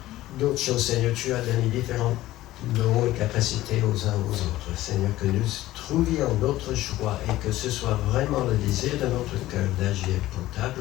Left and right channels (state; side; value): quieter; right; 15.9 dB